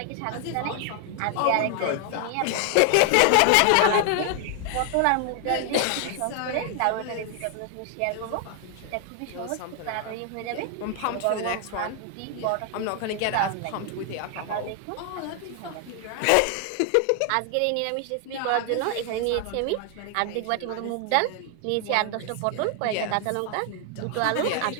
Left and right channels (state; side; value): different; both; correlation 0.00